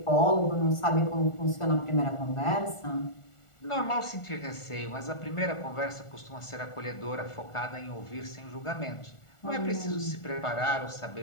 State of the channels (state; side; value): late; right; 1.4 ms